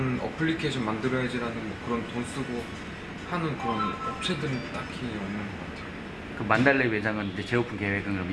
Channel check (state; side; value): identical; both; correlation 1.00